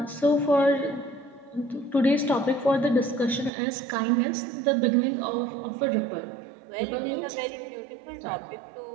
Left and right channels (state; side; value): drops out; left; at 3.5 s